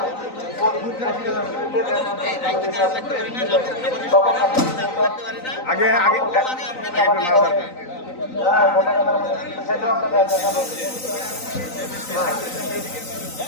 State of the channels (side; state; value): right; late; 3.9 ms